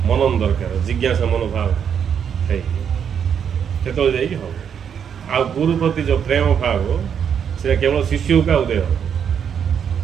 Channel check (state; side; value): quieter; left; 7.9 dB